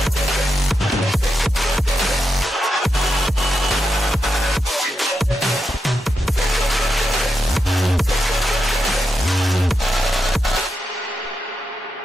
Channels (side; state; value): both; normal; correlation 0.85